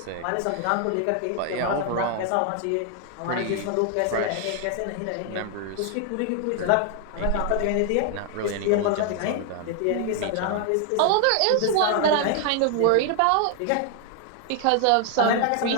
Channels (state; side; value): different; both; correlation 0.00